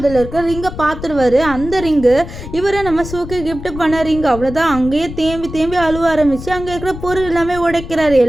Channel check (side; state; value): left; noise; rumble, 11 dB below the sound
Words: இருக்க ரிங்கை பார்த்துருவாரு. அந்த ரிங்கு இவரை நம்ம சூக்கு கிஃப்ட் பண்ண ரிங். அவ்வளோதான். அங்கேயே தேம்பி அழுவ ஆரம்பிச்சு அங்கே இருக்கிற பொருள் எல்லாமே உடைக்கிறாரு.